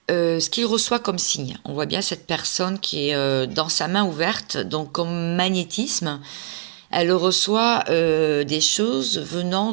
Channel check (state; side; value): silent; left; 61 dB below the other